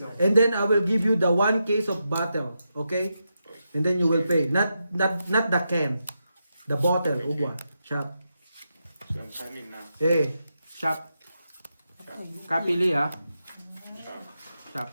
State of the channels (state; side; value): inverted; both; correlation -0.85